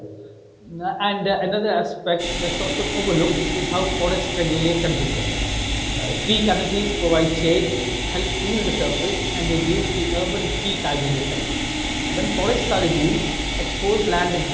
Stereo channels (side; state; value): both; identical; correlation 1.00